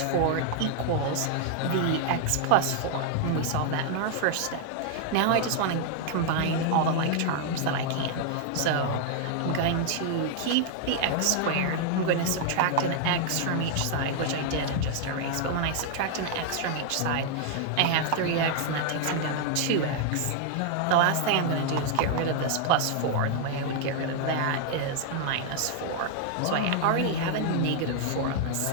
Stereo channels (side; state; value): both; different; correlation 0.00